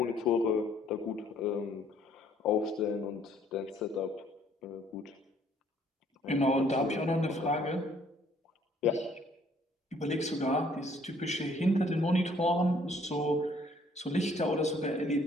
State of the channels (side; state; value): both; normal; correlation 0.62